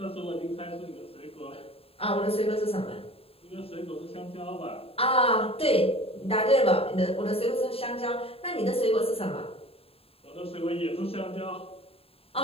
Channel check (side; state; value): right; late; 0.28 ms